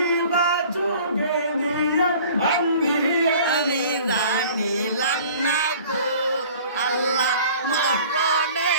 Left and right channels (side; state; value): both; inverted; correlation -0.47